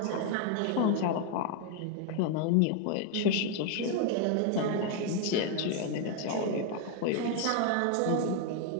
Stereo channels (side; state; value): both; different; correlation 0.01